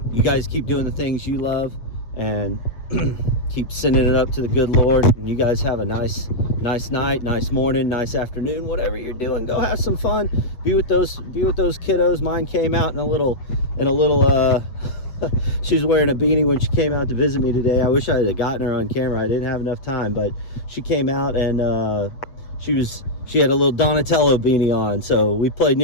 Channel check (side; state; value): right; late; 8.2 ms